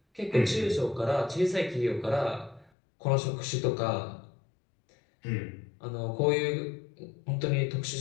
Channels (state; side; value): drops out; right; at 2.7 s